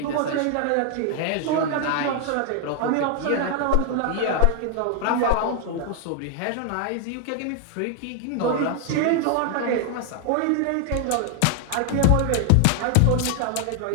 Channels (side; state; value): both; different; correlation 0.00